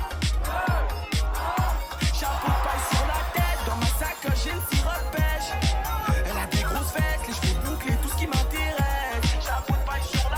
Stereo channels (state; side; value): identical; both; correlation 1.00